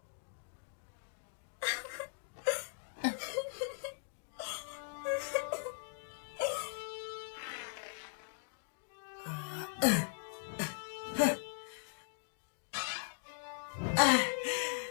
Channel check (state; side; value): silent; right; digital silence